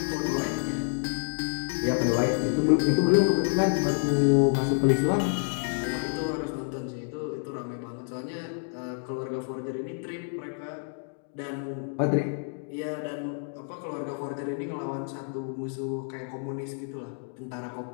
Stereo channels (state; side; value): silent; right; 57 dB below the other